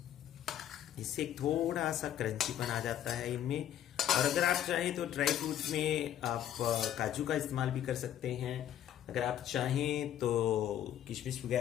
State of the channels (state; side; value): quieter; right; 10.9 dB